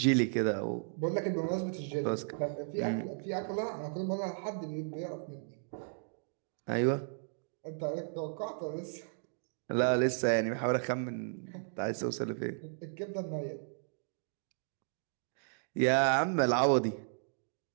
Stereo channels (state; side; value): silent; left; digital silence